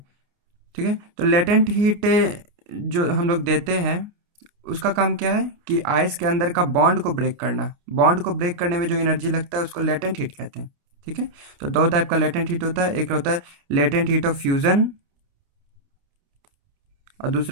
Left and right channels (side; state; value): left; late; 29 ms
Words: ठीक है। तो लेटेंट हीट जो हम लोग देते हैं, उसका काम क्या है कि आइस के अंदर का बॉन्ड को ब्रेक करना। बॉन्ड को ब्रेक करने में जो एनर्जी लगता है उसको लेटेंट हीट कहते हैं। ठीक है। तो दो टाइप का लेटेंट हीट होता है, एक होता है लेटेंट हीट ऑफ फ्यूजन और